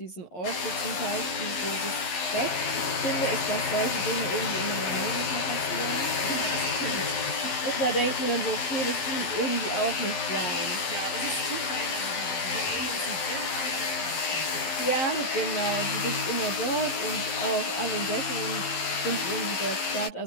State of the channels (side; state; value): right; late; 11 ms